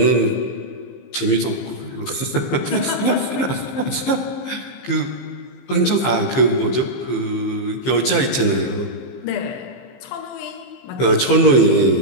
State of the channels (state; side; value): late; right; 15 ms